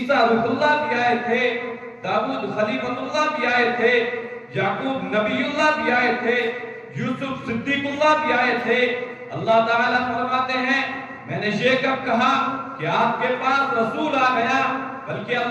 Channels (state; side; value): identical; both; correlation 1.00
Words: روح اللہ بھی آئے تھے، داؤد خلیفۃ اللہ بھی آئے تھے، یعقوب نبی اللہ بھی آئے تھے، یوسف صدیق اللہ بھی آئے تھے۔ اللہ تعالیٰ فرماتے ہیں میں نے یہ کب کہا کہ آپ کے پاس رسول آ گیا، بلکہ